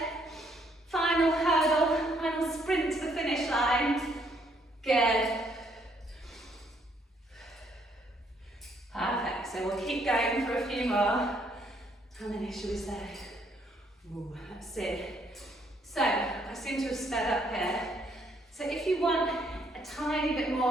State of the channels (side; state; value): both; normal; correlation 0.69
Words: Final hurdle, final sprint to the finish line. Good. so we'll keep going for a few more. How many should we say? Ooh, let's see. So, I seem to have sped up here. So if you want a tiny bit